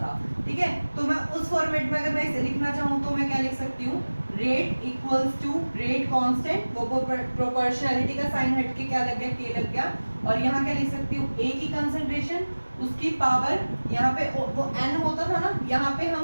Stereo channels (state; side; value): inverted; both; correlation -1.00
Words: ठीक है, तो मैं उस फॉर्मेट में अगर मैं इसे लिखना चाहूँ तो मैं क्या लिख सकती हूँ, rate equals to rate constant, वो प्रोपोर्शनैलिटी का साइन हट के क्या लग गया, k लग गया। और यहाँ क्या लिख सकती हूँ, a की कंसेंट्रेशन, उसकी पावर, यहाँ पे वो n होता था ना, यहाँ पे